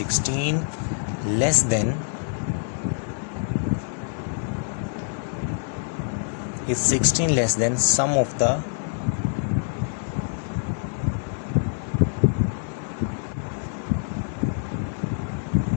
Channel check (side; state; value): right; silent; 59 dB below the other